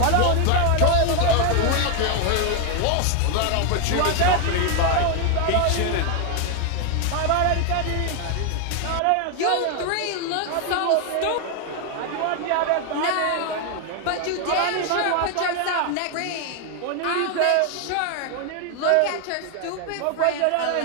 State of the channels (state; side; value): different; both; correlation 0.01